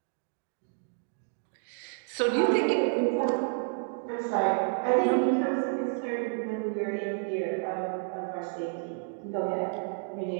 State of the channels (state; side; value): silent; left; 58 dB below the other